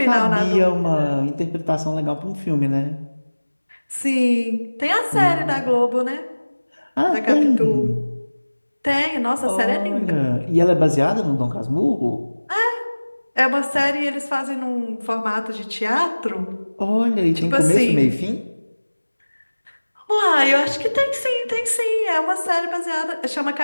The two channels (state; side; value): inverted; both; correlation -1.00